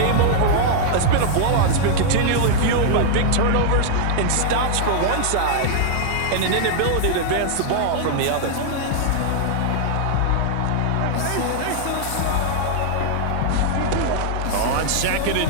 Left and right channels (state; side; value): different; both; correlation -0.01